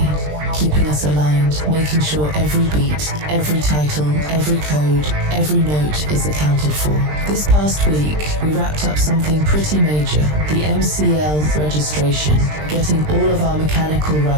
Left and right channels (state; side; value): late; left; 20 ms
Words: keeping us aligned, making sure every beat, every title, every code, every note is accounted for. This past week, we wrapped up something pretty major, the MCL registration, getting all of our mechanical